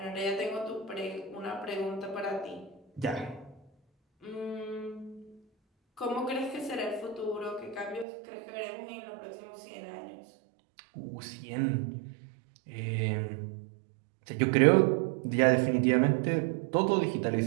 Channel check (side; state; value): left; drops out; at 8.1 s